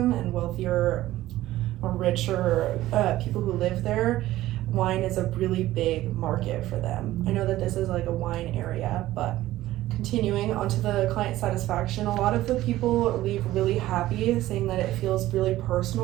and wealthier or richer people who live there. Wine is a really big market for them. I know that this is like a wine area, but continuing onto the client satisfaction, a lot of the people leave really happy, saying that it feels really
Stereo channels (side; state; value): left; quieter; 15.4 dB